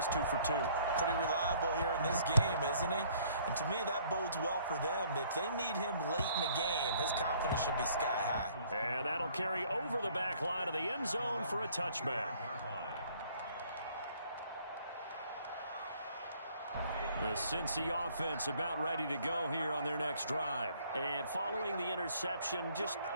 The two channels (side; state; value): both; inverted; correlation -0.60